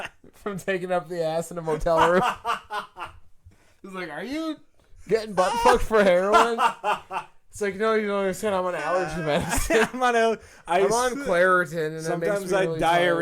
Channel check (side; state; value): both; identical; correlation 1.00